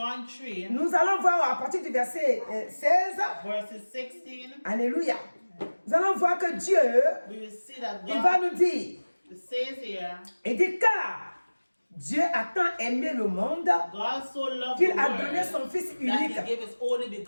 3, nous allons voir à partir du verset 16, verses 16, alléluia, nous allons voir que Dieu, we will see that il va God nous dire, says here, il dit car Dieu a tant aimé le monde God so loved qu'il the a donné world son Fils that unique, he gave his only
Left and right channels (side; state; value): both; inverted; correlation -1.00